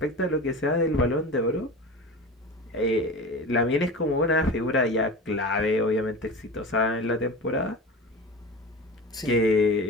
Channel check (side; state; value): both; normal; correlation 0.31